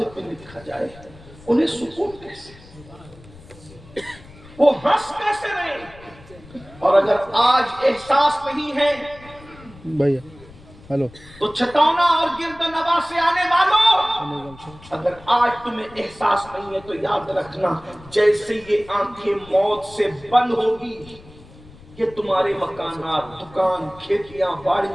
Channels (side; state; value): left; noise; rumble, 21 dB below the sound